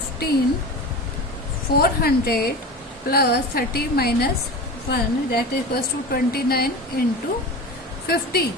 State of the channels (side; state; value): both; normal; correlation 0.30